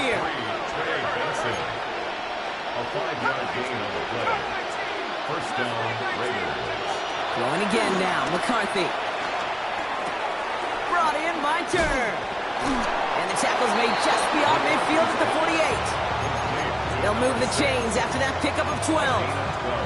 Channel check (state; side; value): identical; both; correlation 1.00